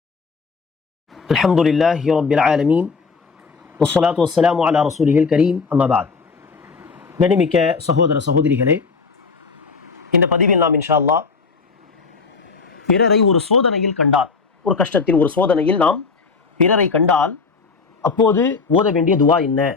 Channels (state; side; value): quieter; right; 4.8 dB